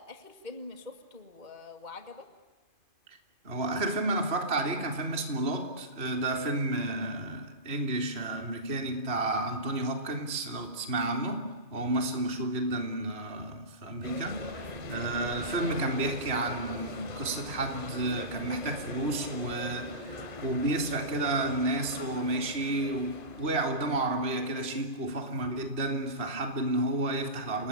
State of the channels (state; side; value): late; left; 2.5 ms